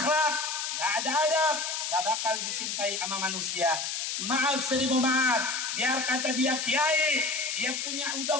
nggak ada adab, nggak bakal dicintai sama manusia. Maaf, seribu maaf, biar kata dia kiai, dia punya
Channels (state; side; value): noise; left; hiss, 2 dB below the sound